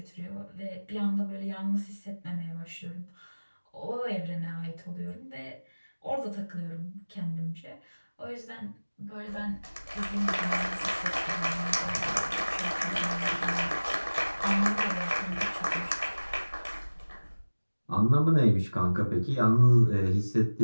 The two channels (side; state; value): both; inverted; correlation -1.00